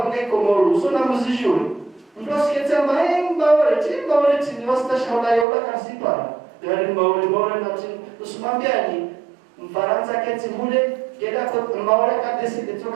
Komoro sona muzijuri mdosikete maemba wale chini wastashaula yola kasipa yani mawale na chini usimambiani Mfaransa keti mule kila kwa mawale kadesi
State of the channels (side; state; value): left; drops out; at 5.5 s